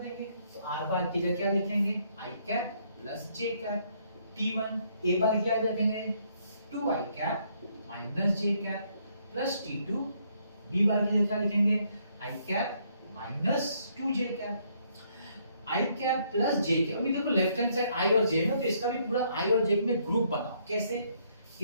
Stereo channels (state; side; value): inverted; both; correlation -0.70